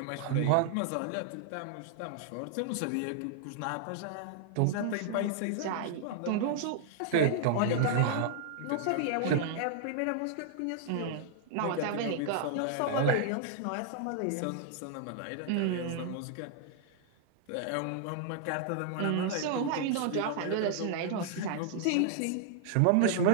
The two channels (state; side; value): different; both; correlation -0.01